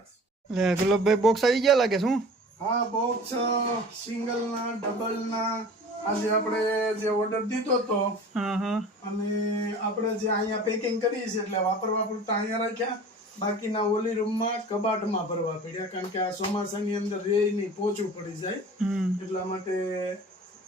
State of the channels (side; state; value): both; normal; correlation 0.41